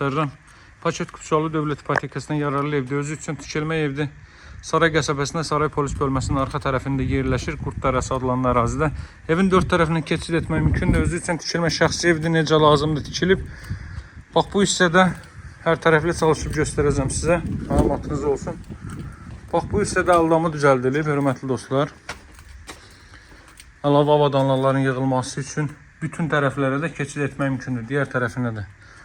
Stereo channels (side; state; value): both; identical; correlation 1.00